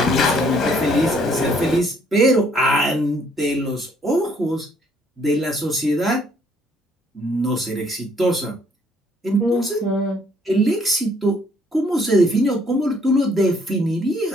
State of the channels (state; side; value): normal; both; correlation 0.64